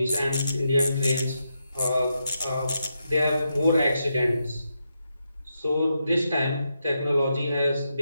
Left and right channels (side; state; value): both; inverted; correlation -0.84